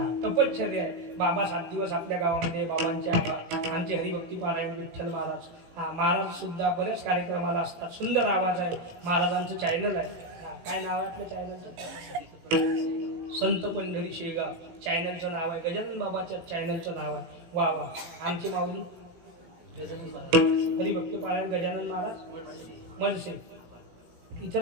तपश्चर्या आहे. बाबा 7 दिवस आपल्या गावामध्ये बाबांचे आमचे हरिभक्ती पारायण. विठ्ठल महाराज महाराज सुद्धा बऱ्याच कार्यक्रमाला असतात. सुंदर आवाज आहे. महाराजांचं चॅनल आहे. काय नाव आहे आपल्या चॅनलचं? संत पंढरी शेगाव चॅनलचं नाव आहे. गजानन बाबाच्या चॅनलचं नाव आहे. वा वा. आमची माऊली हरिभक्ती पारायण गजानन महाराज मडसे.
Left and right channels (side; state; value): left; late; 17 ms